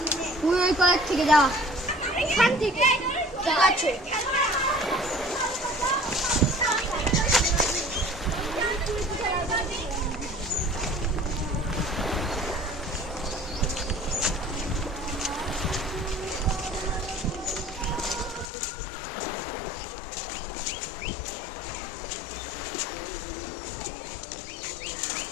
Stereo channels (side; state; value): right; drops out; at 18.4 s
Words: তুই ওই কলেজ থেকে যা। এখান থেকে ঠিক আছে।